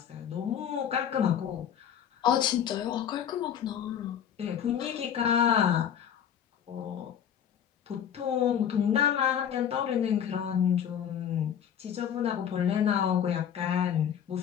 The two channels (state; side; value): quieter; right; 8.9 dB